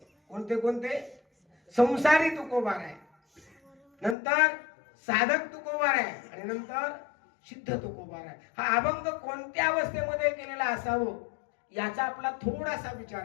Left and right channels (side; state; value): right; drops out; at 4.2 s